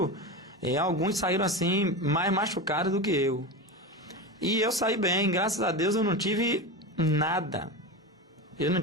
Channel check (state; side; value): normal; both; correlation 0.22